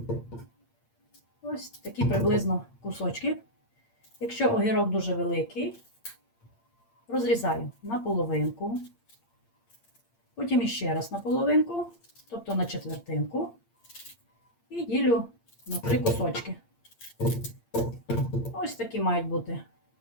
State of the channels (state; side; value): late; right; 8.7 ms